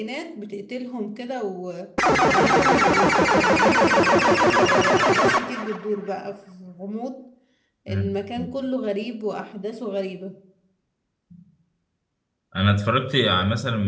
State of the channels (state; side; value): identical; both; correlation 1.00